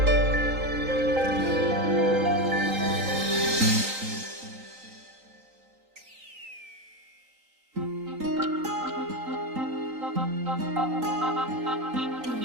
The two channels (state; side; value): late; left; 3.9 ms